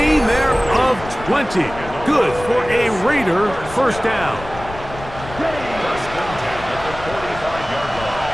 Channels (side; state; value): left; noise; rumble, 13 dB below the sound